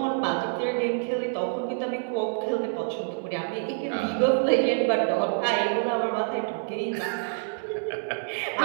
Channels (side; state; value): left; silent; digital silence